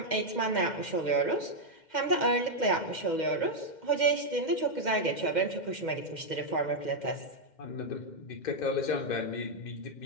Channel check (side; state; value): right; late; 2.1 ms